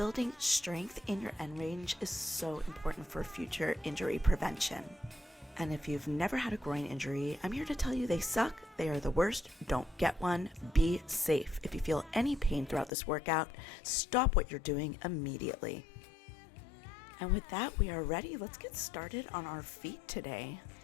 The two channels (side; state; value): right; drops out; at 12.9 s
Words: strength in your end range is so important for future injury prevention. And if you've never had a groin injury, I'm here to tell you they suck, they are the worst, don't get one, be safe. If you feel any pain throughout this workout, stop what you're doing immediately. And with that, we are ready. Let's get started on our feet today.